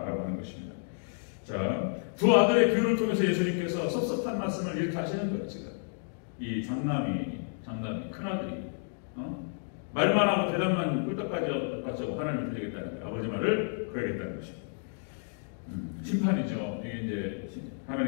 하는 것입니다. 자, 두 아들의 비유를 통해서 예수님께서 섭섭한 말씀을 이렇게 하시는 거예요. 지금 이 장남이 큰아들이 말만 하고 대답만 꿀떡까지 하고 하나님을 드리겠다는 거예요. 아버지 말을 그러겠다는 것입니다. 심판이죠. 이게 이제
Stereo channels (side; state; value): right; silent; digital silence